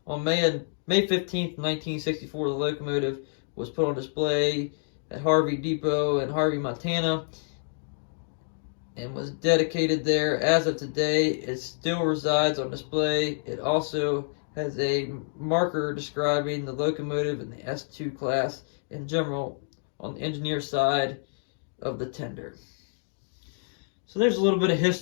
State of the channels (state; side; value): silent; right; digital silence